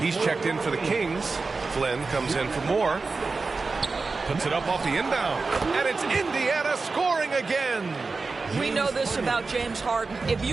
he's checked in for the Kings. Flynn comes in for Moore. Puts it up off the inbound. And it's Indiana scoring again. We know this about James Harden. If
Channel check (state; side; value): quieter; left; 4.1 dB